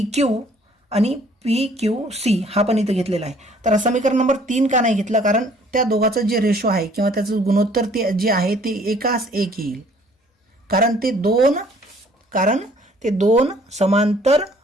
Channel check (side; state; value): both; normal; correlation 0.58